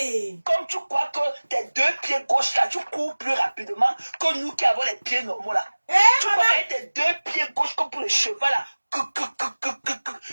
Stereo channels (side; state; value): both; inverted; correlation -1.00